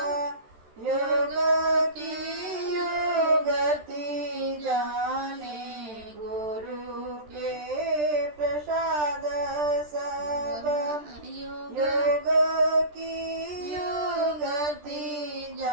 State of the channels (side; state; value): left; late; 13 ms